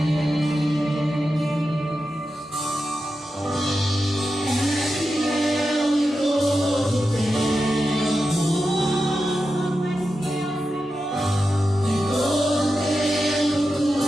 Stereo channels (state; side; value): normal; both; correlation 0.90